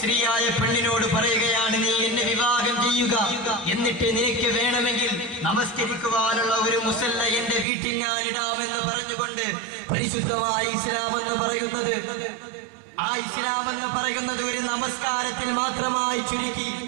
പെണ്ണിനോട് പറയുകയാണ്, നീ എന്നെ വിവാഹം ചെയ്യുക, എന്നിട്ട് നിനക്ക് വേണമെങ്കിൽ നമസ്കരിക്കുവാനുള്ള ഒരു മുസല്ല എന്റെ വീട്ടിൽ ഞാൻ ഇടാമെന്ന് പറഞ്ഞുകൊണ്ട് പരിശുദ്ധമായ ഇസ്ലാം എന്ന് പറയുന്നത് ഒരു നമസ്കാരത്തിൽ മാത്രമായി ചുരുക്കി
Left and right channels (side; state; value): left; drops out; at 7.7 s